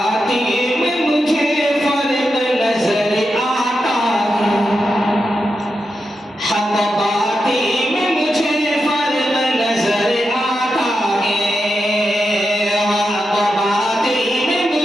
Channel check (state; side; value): normal; both; correlation 0.88